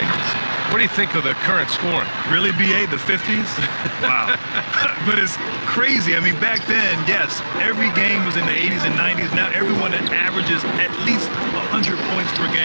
What do you think of the current scoring? Really, BA, the 50s? Wow. But it's crazy. Back then, yes, every game was in the 80s and 90s. Now everyone averages at least 100 points per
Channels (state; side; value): inverted; both; correlation -1.00